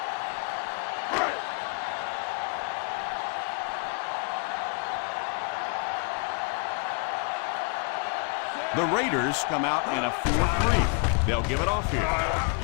The Raiders come out in a 4-3. They'll give it off here.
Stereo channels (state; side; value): quieter; right; 37.6 dB